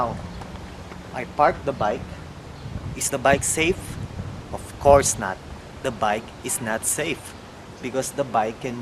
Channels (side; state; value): both; identical; correlation 1.00